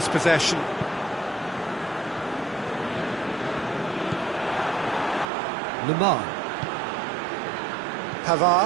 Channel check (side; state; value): left; drops out; at 5.2 s